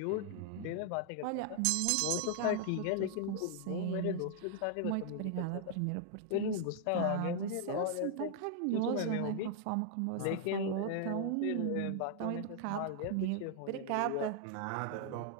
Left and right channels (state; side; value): different; both; correlation 0.00